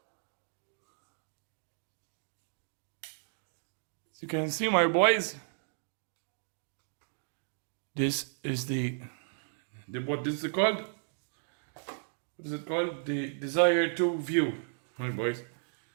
As you can see, my boys, this is what is it called? What is it called? The Desire 2 View, my boys.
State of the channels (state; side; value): silent; left; digital silence